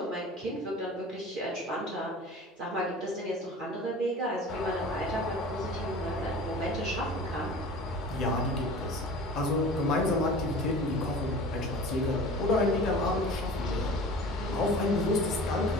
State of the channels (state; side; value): normal; both; correlation 0.40